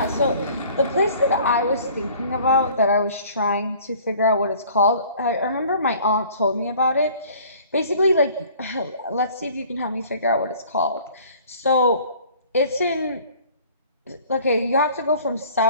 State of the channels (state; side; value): inverted; both; correlation -0.51